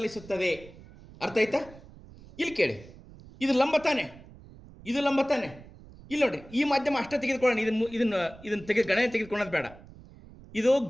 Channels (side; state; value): right; noise; rumble, 20 dB below the sound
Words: ಅರ್ಥ ಆಯ್ತಾ? ಇಲ್ಲಿ ಕೇಳಿ, ಇದು ಲಂಬ ತಾನೆ, ಇದು ಲಂಬ ತಾನೆ. ಇಲ್ಲಿ ನೋಡ್ರಿ, ಈ ಮಾಧ್ಯಮ ಅಷ್ಟೇ ತೆಗೆದುಕೊಳ್ಳೋಣ, ಇದನ್ನು ಗಣನೆ ತೆಗೆದುಕೊಳ್ಳೋದು ಬೇಡ. ಇದು